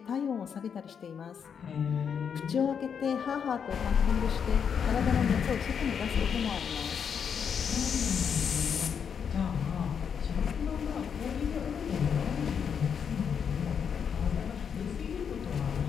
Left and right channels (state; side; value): quieter; right; 7.2 dB